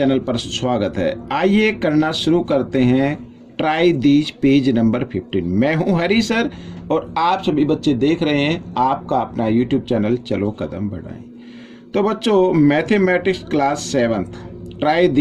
पर स्वागत है। आइए करना शुरू करते हैं ट्राई दीज पेज नंबर 15। मैं हूं हरी सर और आप सभी बच्चे देख रहे हैं आपका अपना यूट्यूब चैनल चलो कदम बढ़ाएं। तो बच्चों, mathematics class 7 try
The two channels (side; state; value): both; identical; correlation 1.00